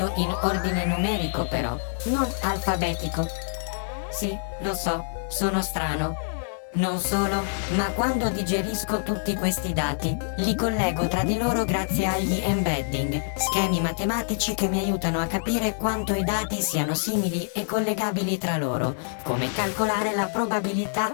in ordine numerico però, non alfabetico. Sì, lo so, sono strano. Non solo, ma quando digerisco tutti questi dati, li collego tra di loro grazie agli embedding, schemi matematici che mi aiutano a capire quanto i dati siano simili e collegabili tra loro, come calcolare la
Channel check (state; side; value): silent; right; digital silence